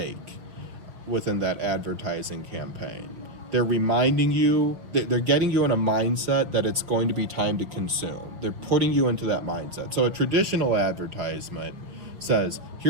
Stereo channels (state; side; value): late; left; 5.2 ms